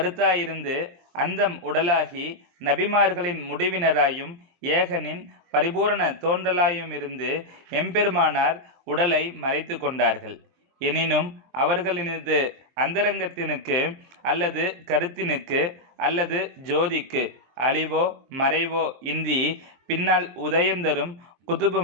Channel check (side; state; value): left; late; 23 ms